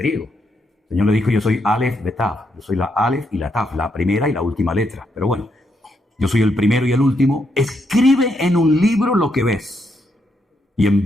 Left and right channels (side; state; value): both; normal; correlation 0.78